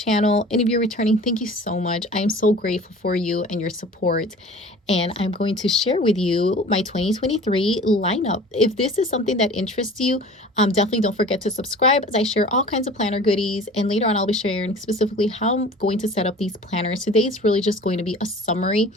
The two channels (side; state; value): both; normal; correlation 0.43